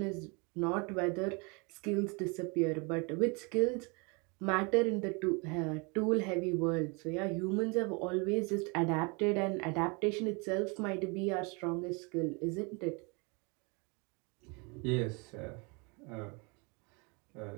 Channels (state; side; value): quieter; left; 30.9 dB